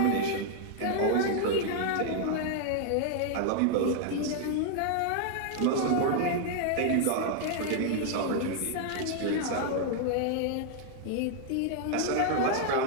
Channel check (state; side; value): different; both; correlation 0.00